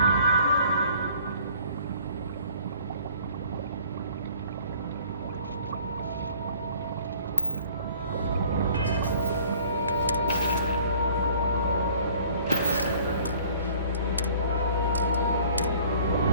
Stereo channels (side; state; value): both; inverted; correlation -0.54